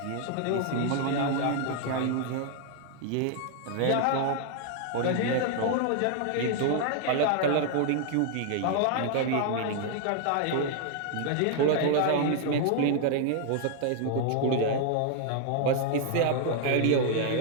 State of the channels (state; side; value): different; both; correlation 0.00